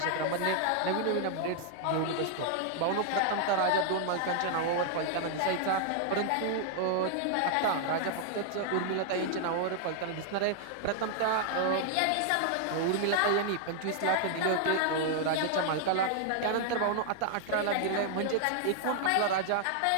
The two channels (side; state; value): both; different; correlation 0.00